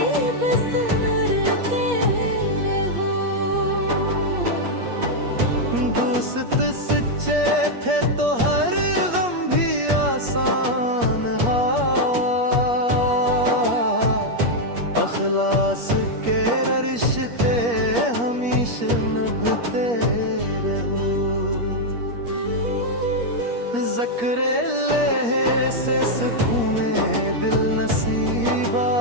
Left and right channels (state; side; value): late; left; 8.4 ms